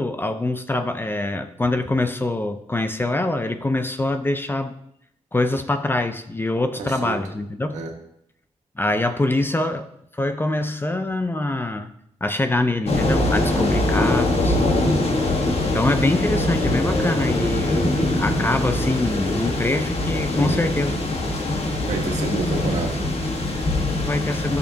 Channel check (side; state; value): both; normal; correlation 0.76